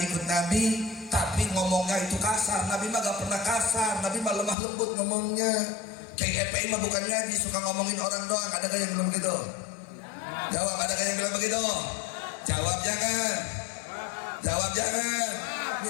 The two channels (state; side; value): drops out; right; at 4.5 s